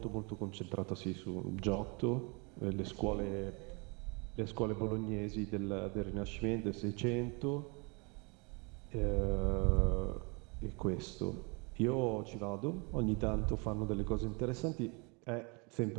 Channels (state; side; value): quieter; left; 31.5 dB